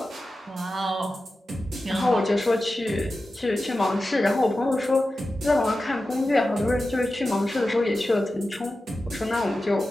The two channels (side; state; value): both; normal; correlation 0.93